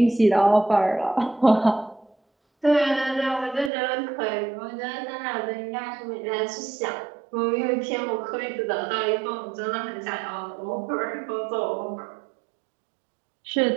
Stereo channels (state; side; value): drops out; left; at 3.7 s